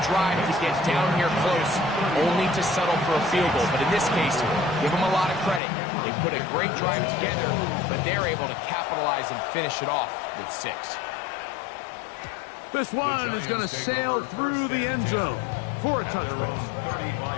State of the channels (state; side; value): drops out; right; at 5.6 s